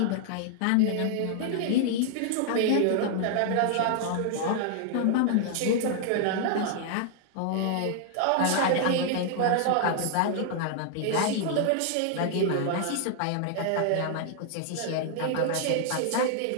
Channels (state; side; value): different; both; correlation 0.00